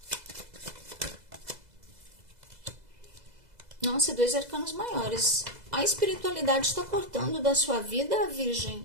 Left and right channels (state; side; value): late; left; 2.0 ms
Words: Nossa, 2 arcanos maiores. A espiritualidade está cortando da sua vida,